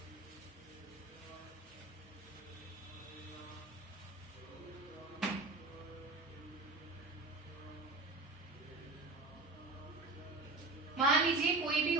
मान लीजिए कोई भी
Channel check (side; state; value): left; quieter; 3.3 dB